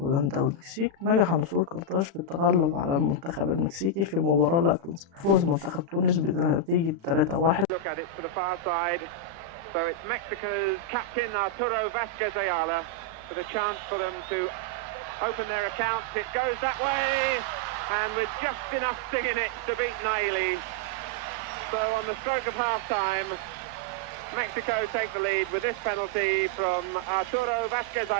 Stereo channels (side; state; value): left; late; 36 ms